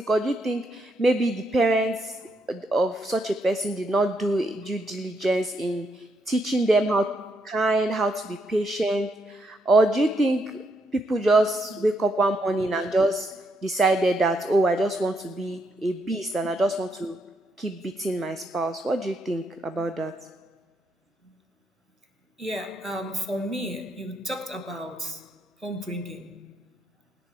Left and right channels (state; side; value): normal; both; correlation 0.77